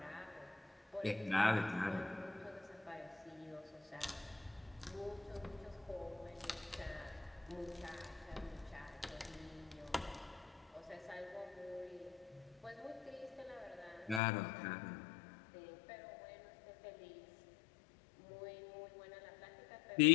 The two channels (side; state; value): right; drops out; at 14.2 s